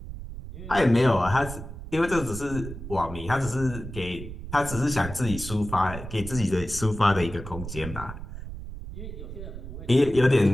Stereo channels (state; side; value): noise; right; rumble, 10 dB below the sound